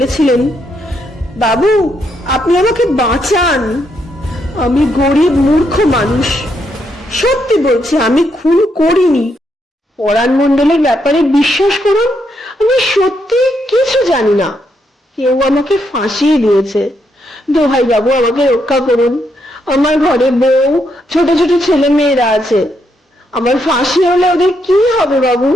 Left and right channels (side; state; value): both; normal; correlation 0.78